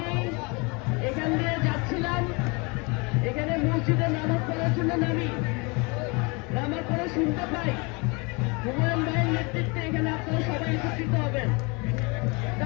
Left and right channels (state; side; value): quieter; right; 29.3 dB